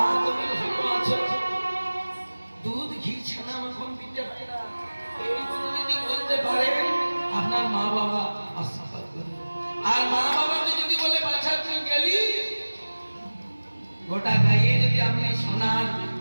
তুমি ভালো আছো, দুধ ঘি ছানা মাখন দিতে হয় না। এইগুলো যদি বলতে পারে, আপনার মা বাবা আশীর্বাদ করবে। আর মা বাবাকে যদি বলে বাচ্চা তুই গেলি, গোটা গায়ে যদি আপনি সোনার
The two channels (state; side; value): inverted; both; correlation -1.00